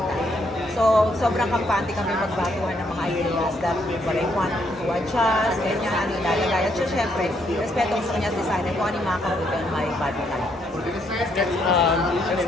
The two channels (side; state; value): both; normal; correlation 0.73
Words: So, sobrang kampante kami magbaguhan ng mga ideas that what I want to adjust, ganyan, ano ilalagay. At syempre, respeto ko sa kanya designer kung ano yung makakabuti on my body type. Let's